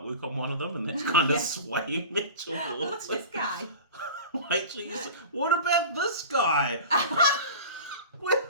on one of them, and that's kind of swaying me towards Look at this guy. Wait till you say, what about this guy? With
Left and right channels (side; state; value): both; inverted; correlation -0.35